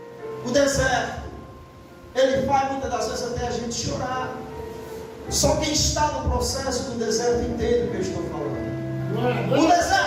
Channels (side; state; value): both; identical; correlation 1.00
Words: O deserto, ele faz muitas das vezes até a gente chorar. Só quem está no processo do deserto entende o que eu estou falando. O